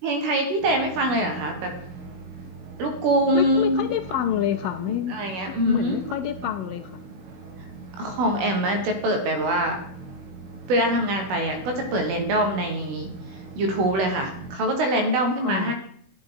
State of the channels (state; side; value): late; left; 16 ms